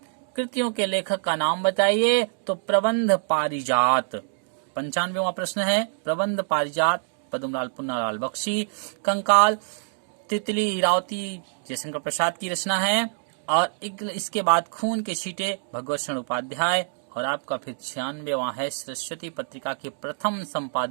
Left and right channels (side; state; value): left; silent; digital silence